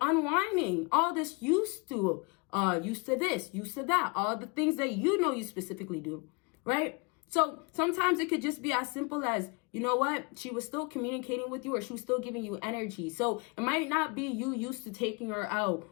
all this used to this, used to that, all the things that you know you specifically do, right? So sometimes it could just be as simple as, you know what, she was still communicating with you or she was still giving you energy. So it might not be you used to taking her out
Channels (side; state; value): right; quieter; 30.0 dB